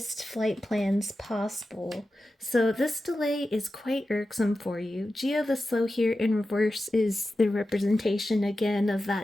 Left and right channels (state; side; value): normal; both; correlation 0.92